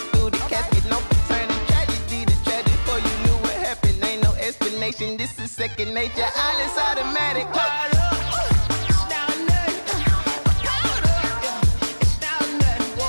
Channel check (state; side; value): inverted; both; correlation -1.00